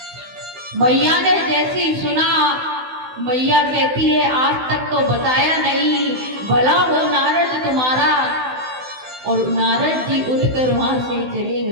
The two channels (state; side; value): late; left; 16 ms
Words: मैया ने जैसे ही सुना, मैया कहती है, आज तक तो बताया नहीं, भला हो नारद तुम्हारा। और नारद जी उठकर वहां से चले